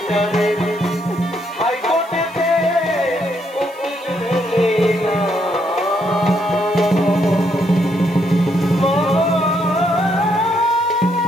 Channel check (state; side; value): noise; right; hiss, 25 dB below the sound